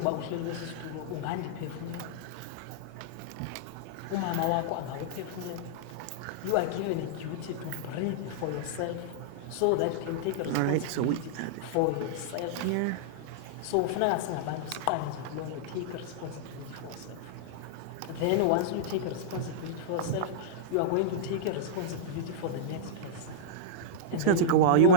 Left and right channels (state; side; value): different; both; correlation -0.02